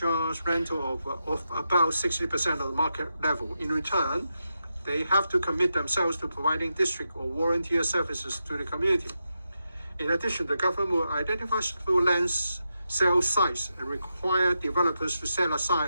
rental of about 60% of the market level. In return, they have to commit themselves to providing district or volunteer services to the community. In addition, the government will identify suitable land sale sites and require developers to set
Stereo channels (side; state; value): both; inverted; correlation -0.87